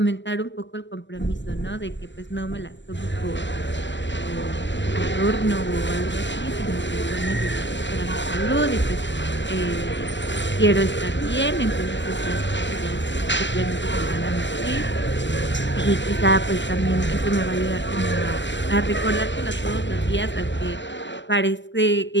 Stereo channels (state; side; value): late; right; 0.53 ms